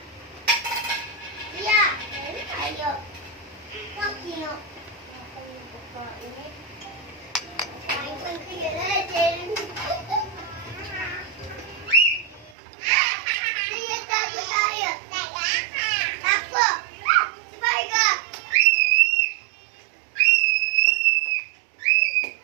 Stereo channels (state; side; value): drops out; left; at 12.6 s